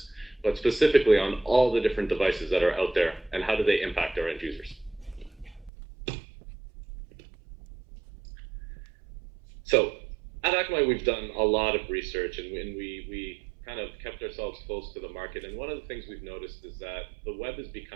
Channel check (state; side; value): drops out; left; at 5.7 s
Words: but specifically on all the different devices that are out there, and how do they impact our end users. So at Akamai, we've done a lot of research, and we kind of kept ourselves close to the market. And one of the things we've noticed is that the web is